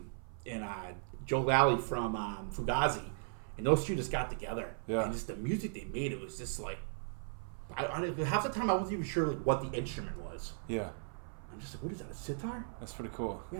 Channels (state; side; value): silent; left; 53 dB below the other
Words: Joe Lally from Fugazi, and those two just got together. Yeah. And just the music they made, it was just like, half the time I wasn't even sure like what the instrument was. Yeah. I'm just like, what is that, a sitar? That's pretty cool.